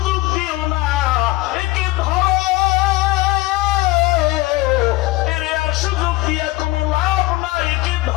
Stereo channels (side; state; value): right; quieter; 19.4 dB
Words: দিও না, একে ধরো। এর আর সুযোগ দিয়া কোনো লাভ নাই, একে